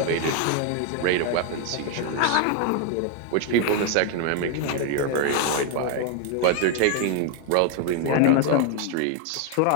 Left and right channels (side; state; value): both; different; correlation 0.01